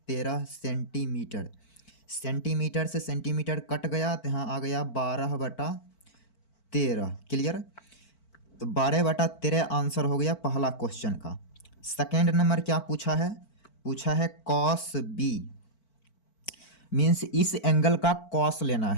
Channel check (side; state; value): right; late; 4.5 ms